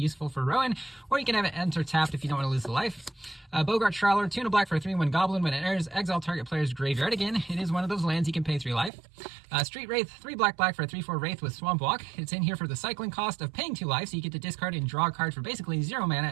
for Rowan, or you can have it enter tapped if you don't want to lose the life. Bogart Trawler, 2 black for a 3/1 goblin. When it enters, exile target player's graveyard. Again, it is one of those lands you can pay 3 life. Street Wraith, 3 black for a 3/4 Wraith with Swamp Walk. It's in here for the cycling cost of paying 2 life, so you get to discard and draw a card for basically 0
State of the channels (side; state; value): left; drops out; at 8.9 s